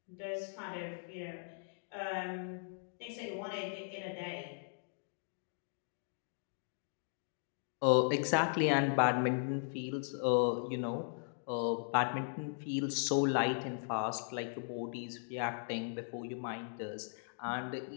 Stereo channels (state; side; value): silent; right; digital silence